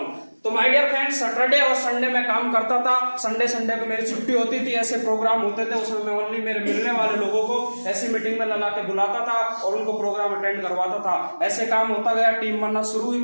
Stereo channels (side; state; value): both; inverted; correlation -1.00